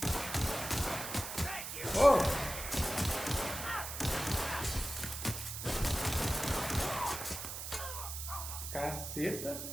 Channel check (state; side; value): noise; right; hiss, 6 dB below the sound